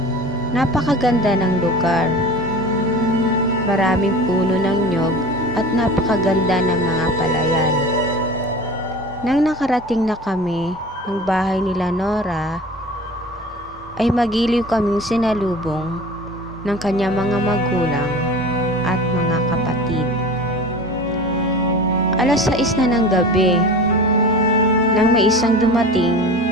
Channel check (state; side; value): normal; both; correlation 0.37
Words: Napakaganda ng lugar. Maraming puno ng nyog at napakaganda ng mga palayan. Nang nakarating na kami ng bahay nila Nora, ay magiliw kaming sinalubong ng kanyang mga magulang at mga kapatid. 6:00 na ng gabi nang may isang dumating